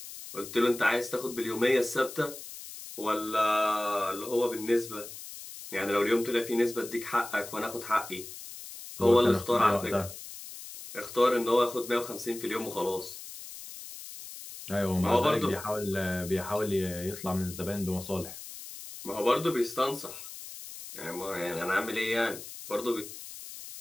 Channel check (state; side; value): noise; left; hiss, 12 dB below the sound